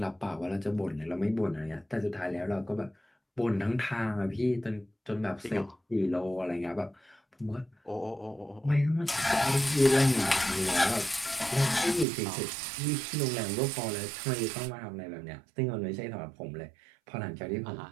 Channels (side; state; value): left; drops out; at 12.1 s